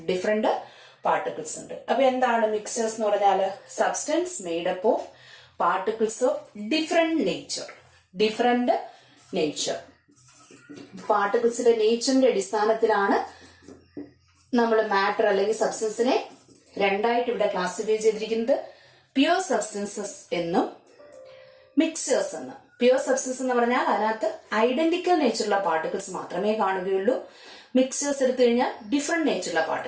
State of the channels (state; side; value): identical; both; correlation 1.00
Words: ഡിഫറെന്റ് പാർട്ടിക്കിൾസ് ഉണ്ട്. അപ്പൊ എന്താണ് മിക്സേഴ്സ് എന്ന് പറഞ്ഞാൽ? Substance made up of particles of different nature. പാർട്ടിക്കിൾസിന്റെ നേച്ചറിന്റെ അടിസ്ഥാനത്തിലാണ് നമ്മൾ മാറ്റർ അല്ലെങ്കിൽ സബ്സ്റ്റൻസിനെ രണ്ടായിട്ട് ഇവിടെ ക്ലാസിഫൈ ചെയ്തിരിക്കുന്നത്. പ്യുവർ സബ്സ്റ്റൻസസ് എന്നും മിക്സേഴ്സ് എന്നും. പ്യുവർ സബ്സ്റ്റൻസ് എന്ന് പറഞ്ഞാൽ അതിനകത്ത് ഐഡന്റിക്കൽ നേച്ചറുള്ള പാർട്ടിക്കിൾസ് മാത്രമേ കാണുകയുള്ളൂ. മിക്സേഴ്സ് എടുത്തു കഴിഞ്ഞാൽ ഡിഫറെന്റ് നേച്ചറുള്ള